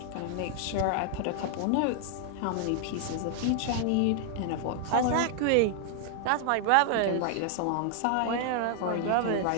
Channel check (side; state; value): both; different; correlation 0.00